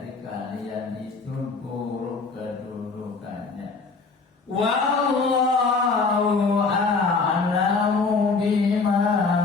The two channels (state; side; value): quieter; right; 4.3 dB